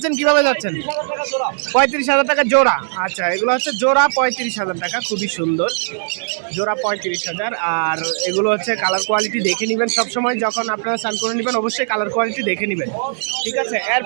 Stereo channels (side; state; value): left; silent; digital silence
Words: কিভাবে যাচ্ছেন? 35,000 টাকা জোড়া। আচ্ছা, এগুলো হচ্ছে জোড়া 35,000 টাকা। খুবই সুন্দর জোড়া 35,000। আর এগুলো হচ্ছে কালার কোয়ালিটি দেখে নেবেন সবসময়, যখন আপনারা স্নান করে নেবেন অবশ্যই কালার কোয়ালিটি দেখে নেবেন, ঠিক আছে?